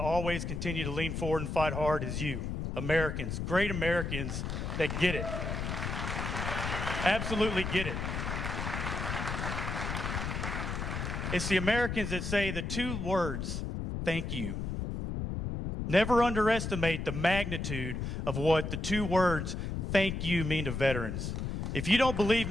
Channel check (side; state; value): left; noise; rumble, 3 dB below the sound